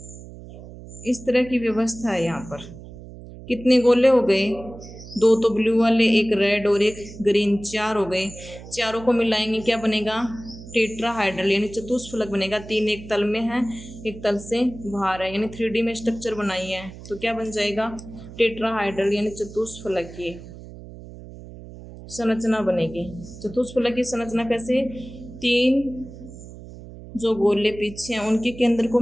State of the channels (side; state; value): right; noise; hum, 15 dB below the sound